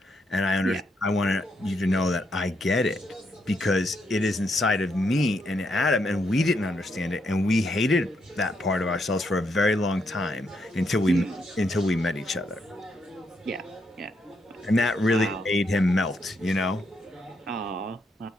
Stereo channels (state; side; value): normal; both; correlation 0.78